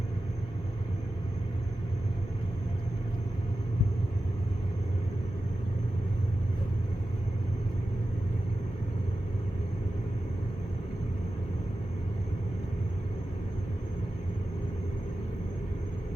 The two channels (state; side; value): normal; both; correlation 0.93